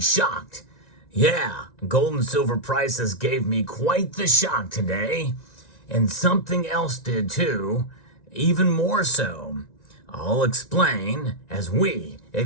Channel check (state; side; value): late; right; 1.9 ms